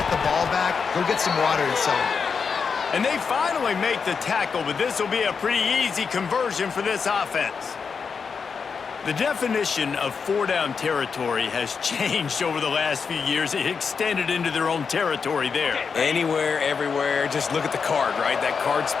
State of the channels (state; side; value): quieter; right; 5.7 dB